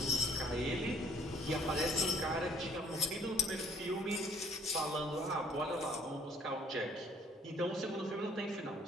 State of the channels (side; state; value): both; normal; correlation 0.59